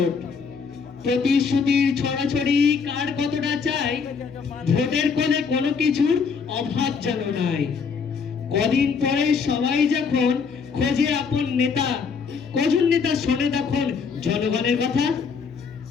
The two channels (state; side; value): quieter; right; 5.6 dB